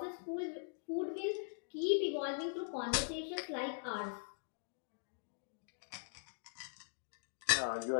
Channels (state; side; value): silent; right; digital silence